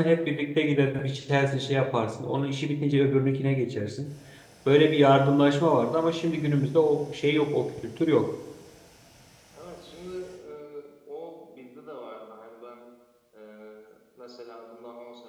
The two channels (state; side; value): identical; both; correlation 1.00